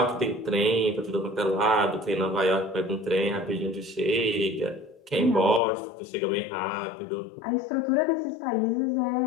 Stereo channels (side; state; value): right; drops out; at 5.6 s